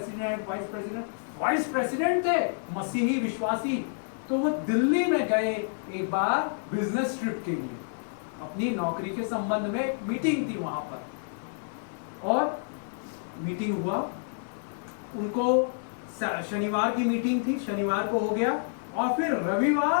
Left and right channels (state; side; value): silent; right; digital silence